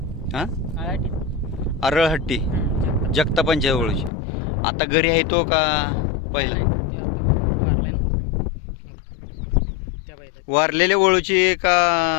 हां अरळहट्टी जगतापांच्या ओळखची. आता घरी आहे तो का पहिला? वारलेल्या ओळखची का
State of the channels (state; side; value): drops out; right; at 4.1 s